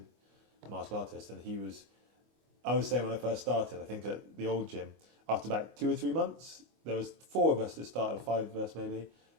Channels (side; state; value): left; late; 25 ms